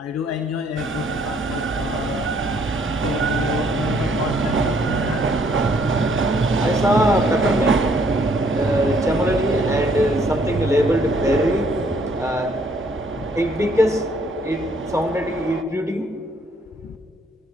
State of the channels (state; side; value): normal; both; correlation 0.65